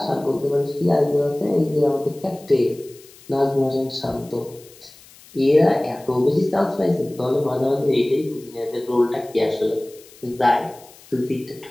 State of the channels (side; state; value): left; noise; hiss, 23 dB below the sound